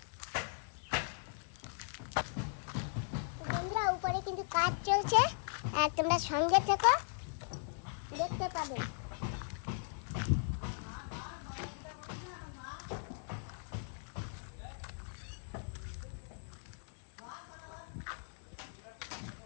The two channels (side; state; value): right; silent; digital silence